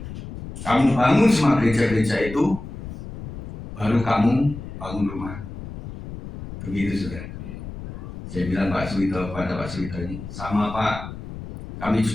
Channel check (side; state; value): left; noise; rumble, 11 dB below the sound